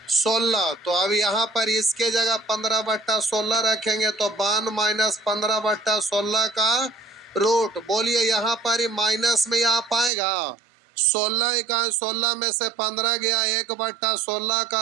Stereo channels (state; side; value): drops out; left; at 10.1 s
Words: तो अब यहाँ पर इसके जगह 15/16 रखेंगे तो 52 माइनस 15/16 का रूट। बोलिए यहाँ पर ही माइनस में आ पाएगा। 16 का 16 में से 15 गया, 1/16